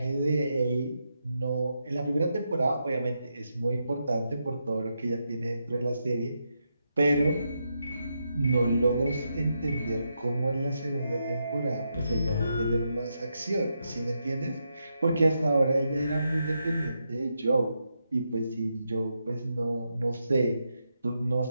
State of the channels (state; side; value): inverted; both; correlation -0.84